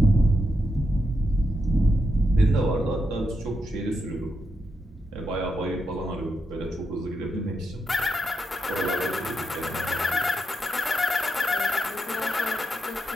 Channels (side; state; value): both; normal; correlation 0.84